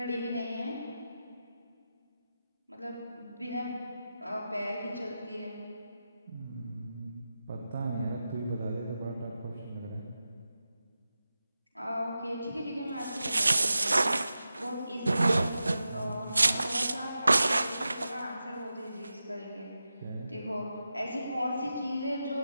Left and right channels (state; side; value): inverted; both; correlation -0.91